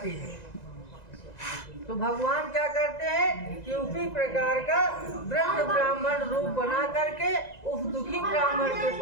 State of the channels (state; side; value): late; right; 1.9 ms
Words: है, तो भगवान क्या करते हैं कि उसी प्रकार का वृद्ध ब्राह्मण रूप बना करके उस दुखी ब्राह्मण के